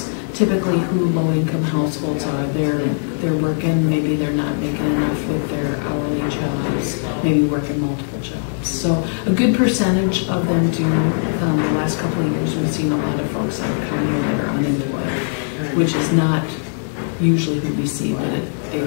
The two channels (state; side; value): silent; right; 60 dB below the other